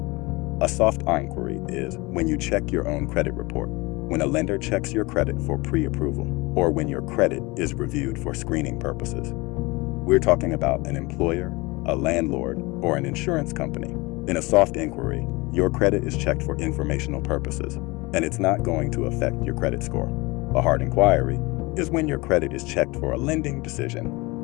A soft inquiry is when you check your own credit report, when a lender checks your credit for pre-approval, or when your credit is reviewed for screening purposes. We're talking about an employer, a landlord, or an insurance company. In a soft inquiry, your credit is checked for informational purposes, and it's not going to affect your credit score. A hard inquiry is when your credit is checked for a lending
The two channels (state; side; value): quieter; right; 24.1 dB